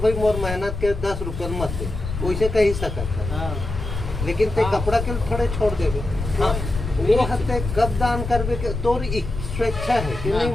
भाई मोर मेहनत के 10 रुपये मत दे वैसे कही सकत लेकिन ते कपड़ा के थोड़े छोड़ देवे हाँ वो हते कब दान करवे के तोर स्वेच्छा है कि नहीं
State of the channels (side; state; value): left; noise; rumble, 6 dB below the sound